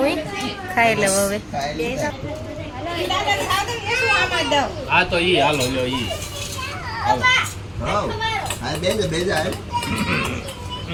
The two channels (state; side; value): identical; both; correlation 1.00